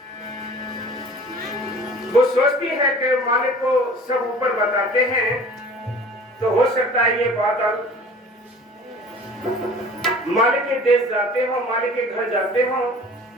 वो सोचती है कि मालिक को सब ऊपर बताते हैं तो हो सकता है ये बादल मालिक के देश जाते हो, मालिक के घर जाते हो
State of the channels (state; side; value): normal; both; correlation 0.45